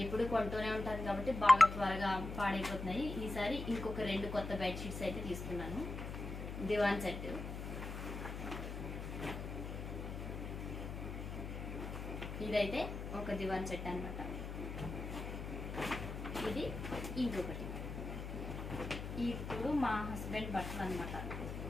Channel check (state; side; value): noise; left; hum, 6 dB below the sound